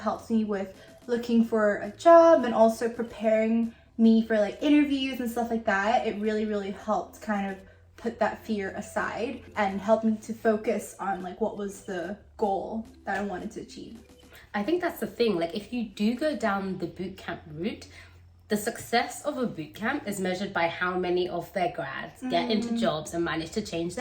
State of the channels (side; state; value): both; identical; correlation 1.00